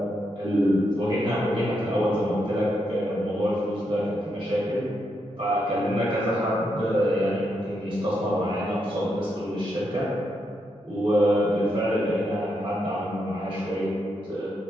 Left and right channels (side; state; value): both; normal; correlation 0.81